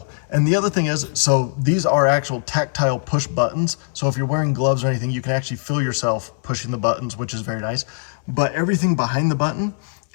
And the other thing is, so these are actual tactile push buttons. So if you're wearing gloves or anything, you can actually feel yourself pushing the buttons, which is very nice. But everything behind the button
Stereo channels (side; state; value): right; silent; 60 dB below the other